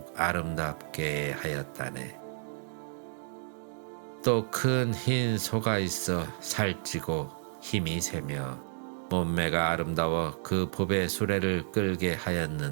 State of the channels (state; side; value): silent; left; digital silence